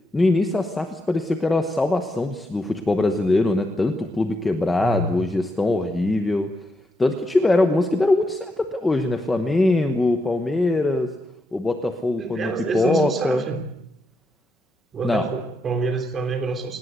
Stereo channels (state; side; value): normal; both; correlation 0.83